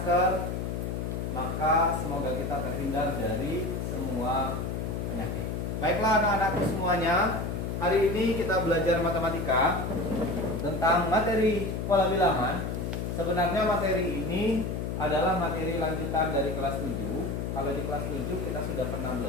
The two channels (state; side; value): noise; left; hum, 3 dB below the sound